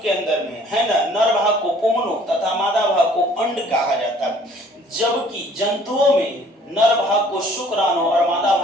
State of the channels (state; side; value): normal; both; correlation 0.56